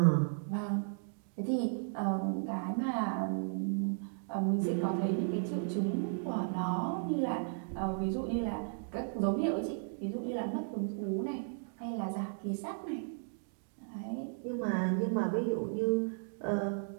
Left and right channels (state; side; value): silent; left; digital silence